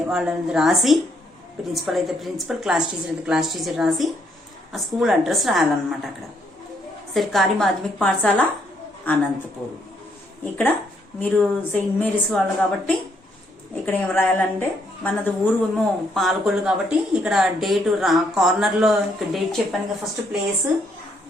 వాళ్ళని రాసి, ప్రిన్సిపల్ అయితే ప్రిన్సిపల్, క్లాస్ టీచర్ అయితే క్లాస్ టీచర్ రాసి ఆ స్కూల్ అడ్రస్ రాయాలన్నమాట. అక్కడ సర్కారీ మాధ్యమిక పాఠశాల అనంతపూర్. ఇక్కడ మీరు సెయింట్ మేరీస్ వాళ్ళు కాబట్టి ఇక్కడ ఏం రాయాలంటే, మనది ఊరు ఏమో పాలకొల్లు కాబట్టి ఇక్కడ డేట్ కార్నర్లో ఇక్కడ డేట్ చెప్పాను కదా. ఫస్ట్ ప్లేస్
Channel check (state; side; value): normal; both; correlation 0.72